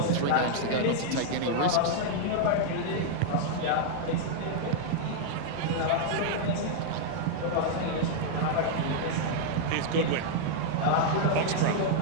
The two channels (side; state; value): both; different; correlation -0.01